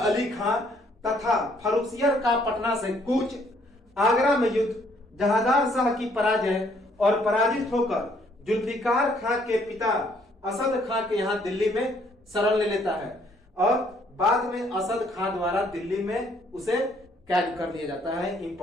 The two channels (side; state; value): both; normal; correlation 0.65